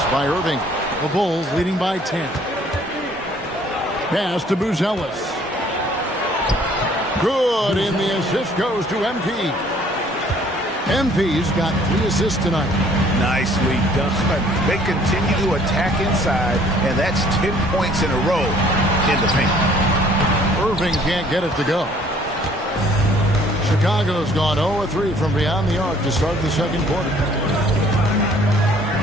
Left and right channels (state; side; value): normal; both; correlation 0.58